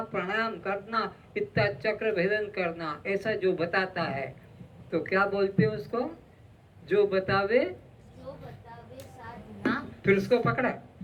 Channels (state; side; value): identical; both; correlation 1.00